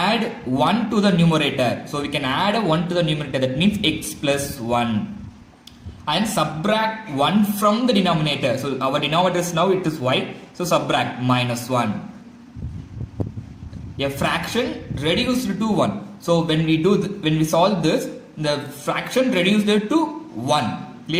1 to the numerator, so we can add 1 to the numerator, that means x plus 1. And subtract 1 from the denominator. So our denominator is now it is y. So subtract minus 1. A fraction reduced to 1. So when we solve this, the fraction reduced to 1.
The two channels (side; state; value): both; identical; correlation 1.00